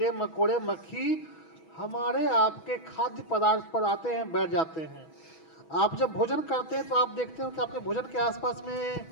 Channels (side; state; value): right; late; 6.2 ms